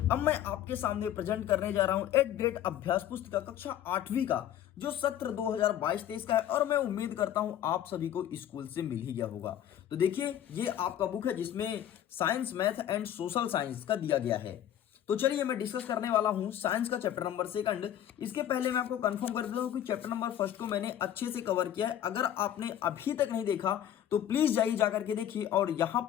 अब मैं आपके सामने प्रेजेंट करने जा रहा हूं एक ग्रेड अभ्यास पुस्तिका कक्षा 8वीं का जो सत्र 2022-23 का है और मैं उम्मीद करता हूं आप सभी को स्कूल से मिल ही गया होगा। तो देखिए, ये आपका बुक है जिसमें science, math and social science का दिया गया है। तो चलिए मैं डिस्कस करने वाला हूं साइंस का चैप्टर नंबर 2। इसके पहले मैं आपको कंफर्म कर देता हूं कि चैप्टर नंबर 1 को मैंने अच्छे से कवर किया है। अगर आपने अभी तक नहीं देखा तो प्लीज जाइए जाकर के देखिए, और यहां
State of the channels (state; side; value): quieter; right; 10.9 dB